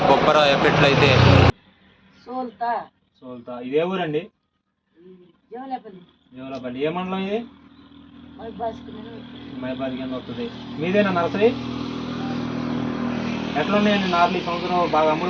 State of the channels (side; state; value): both; identical; correlation 1.00